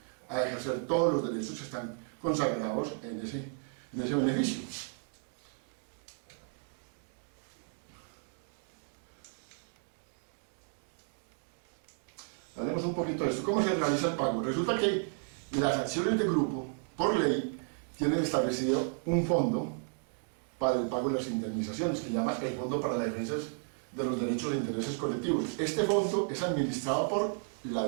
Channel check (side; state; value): left; silent; 55 dB below the other